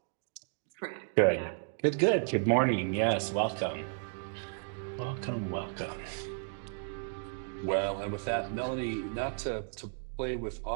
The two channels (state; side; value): silent; left; 56 dB below the other